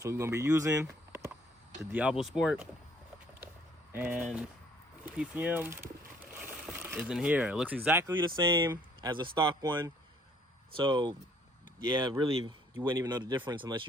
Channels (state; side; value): normal; both; correlation 0.61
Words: we're gonna be using the Diablo Sport, and PCM is in here. It looks exactly the same as a stock one. So yeah, really, you wouldn't even know the difference unless